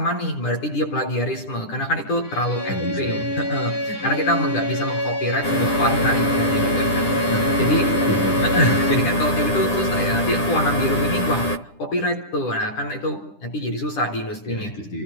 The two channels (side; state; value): right; late; 10 ms